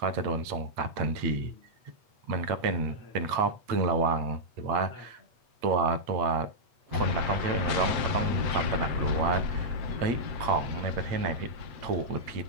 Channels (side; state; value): left; late; 8.2 ms